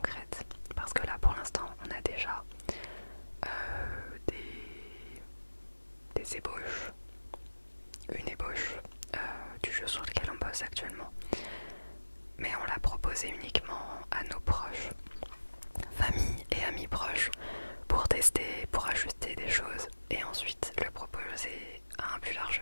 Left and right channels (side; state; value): both; inverted; correlation -1.00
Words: Parce que là, pour l'instant, on a déjà des ébauches, une ébauche du jeu sur lequel on bosse actuellement. Mais on l'a proposé uniquement à nos proches, famille et amis proches, pour tester, pour ajuster des choses et ensuite le proposer à un plus large